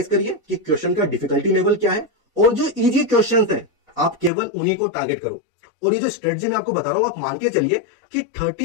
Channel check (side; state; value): right; drops out; at 4.3 s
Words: करिए कि क्वेश्चन का डिफिकल्टी लेवल क्या है, और जो इजी क्वेश्चंस हैं आप केवल उन्हीं को टारगेट करो। और ये जो स्ट्रेटजी मैं आपको बता रहा हूं आप मान के चलिए कि